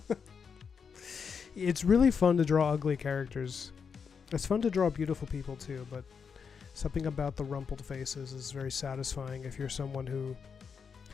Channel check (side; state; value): right; quieter; 6.2 dB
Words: It's really fun to draw ugly characters. It's fun to draw beautiful people too, but something about the rumpled faces is very satisfying if you're someone who